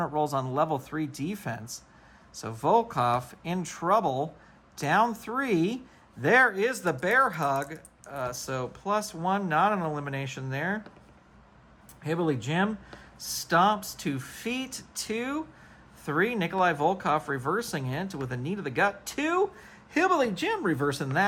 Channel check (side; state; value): both; identical; correlation 1.00